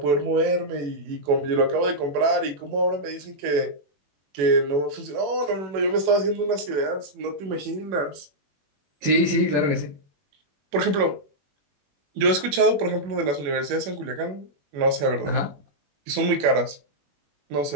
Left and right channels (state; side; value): late; left; 21 ms